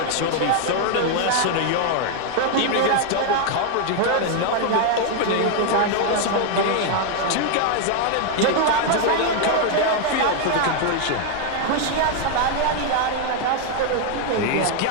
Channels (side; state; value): both; different; correlation 0.00